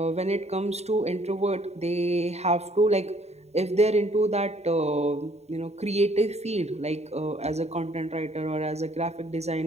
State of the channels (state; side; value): late; left; 0.31 ms